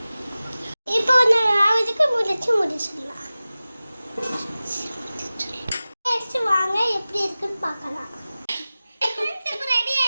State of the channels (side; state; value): both; inverted; correlation -0.97